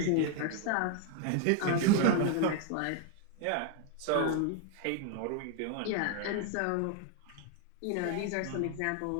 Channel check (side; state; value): both; different; correlation 0.01